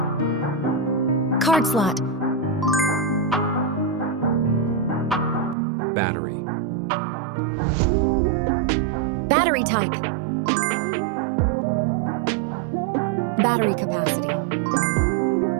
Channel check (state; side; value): drops out; left; at 5.6 s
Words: Card slot. Battery. Battery type. Battery capacity.